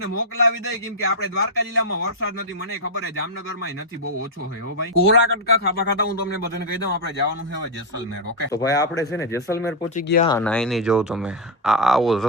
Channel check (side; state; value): both; normal; correlation -0.01